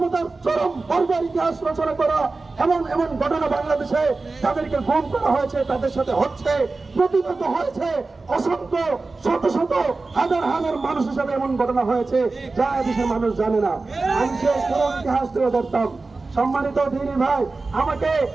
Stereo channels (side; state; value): left; quieter; 3.7 dB